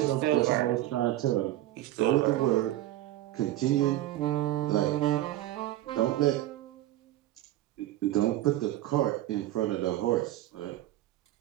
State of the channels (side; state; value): left; quieter; 14.8 dB